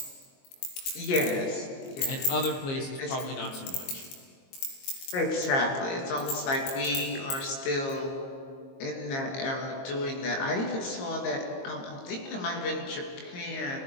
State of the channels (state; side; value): late; right; 22 ms